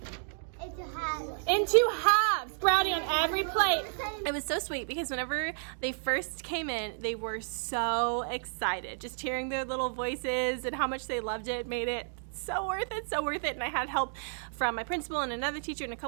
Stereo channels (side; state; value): left; silent; digital silence